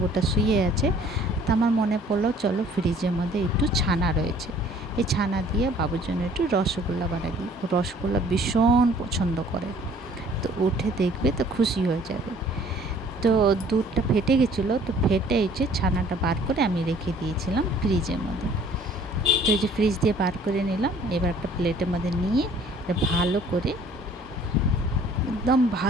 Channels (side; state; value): both; normal; correlation 0.55